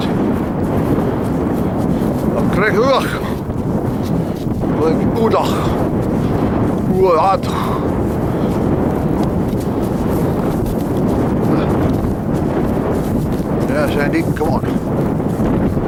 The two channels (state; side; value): identical; both; correlation 1.00